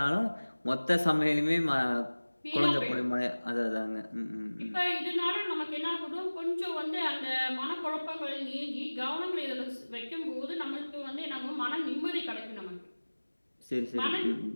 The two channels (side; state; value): both; inverted; correlation -1.00